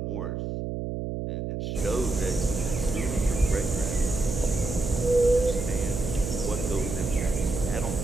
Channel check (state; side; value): noise; right; hum, 4 dB below the sound